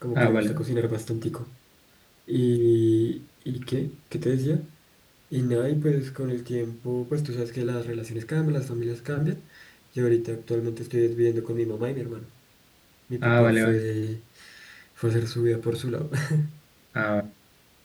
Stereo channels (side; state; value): both; identical; correlation 1.00